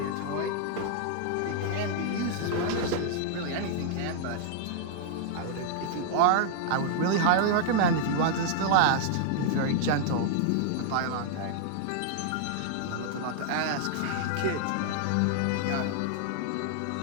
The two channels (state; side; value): different; both; correlation -0.01